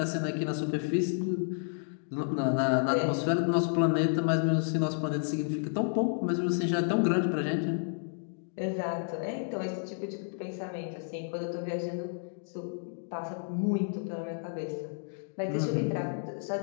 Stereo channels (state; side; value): silent; right; digital silence